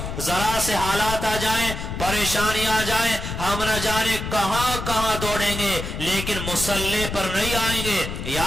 ذرا سے حالات آ جائیں، پریشانی آ جائیں، ہم نہ جانے کہاں کہاں دوڑیں گے، لیکن مسلح پر نہیں آئیں گے۔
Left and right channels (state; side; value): noise; left; rumble, 6 dB below the sound